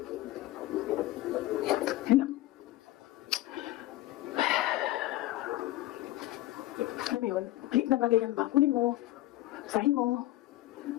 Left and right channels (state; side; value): quieter; right; 16.3 dB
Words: Yan lang. Alam mo yun, maliit na bagay yan ba? Kunin mo. Sahin mo.